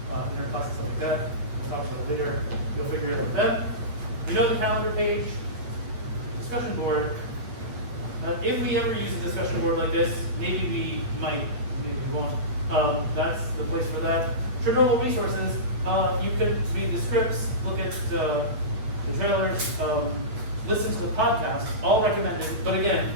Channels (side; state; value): left; late; 8.6 ms